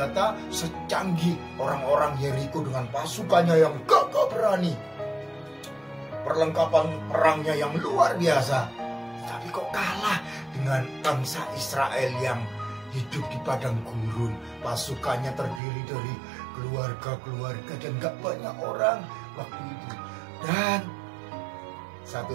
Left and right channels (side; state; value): left; drops out; at 15.6 s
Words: secanggih orang-orang Yeriko dengan pasukannya yang gagah berani. Perlengkapan perangnya yang luar biasa. Tapi kok kalah dengan bangsa Israel yang hidup di padang gurun. Pasukannya terdiri dari keluarga-keluarga dan gak banyak orang waktu itu. Dan satu